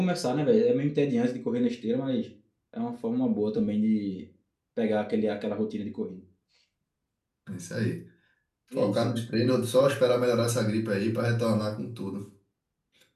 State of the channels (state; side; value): identical; both; correlation 1.00